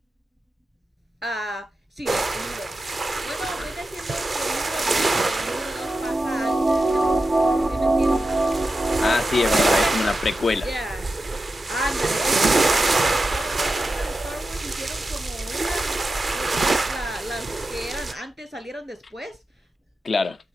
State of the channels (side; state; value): both; normal; correlation 0.91